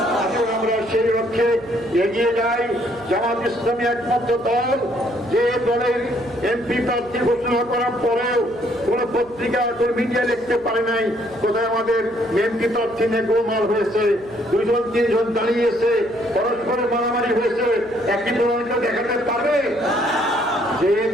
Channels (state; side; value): noise; right; hum, 23 dB below the sound